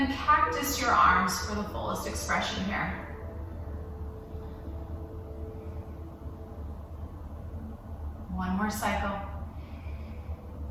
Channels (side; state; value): both; identical; correlation 1.00